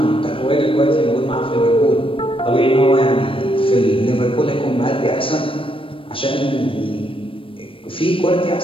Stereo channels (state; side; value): late; right; 0.25 ms